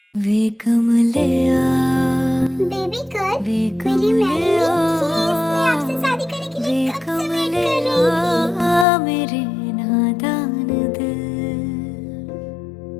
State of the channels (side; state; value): right; drops out; at 8.8 s